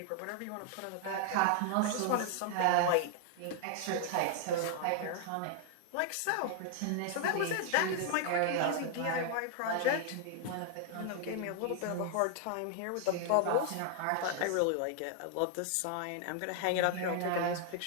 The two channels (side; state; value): both; different; correlation 0.00